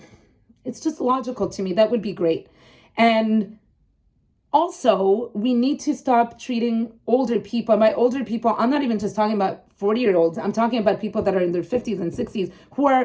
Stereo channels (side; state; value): both; identical; correlation 1.00